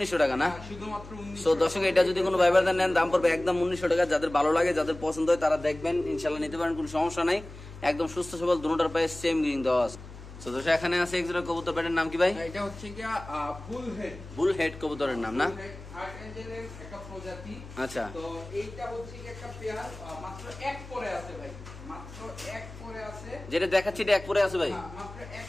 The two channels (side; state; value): left; noise; hum, 15 dB below the sound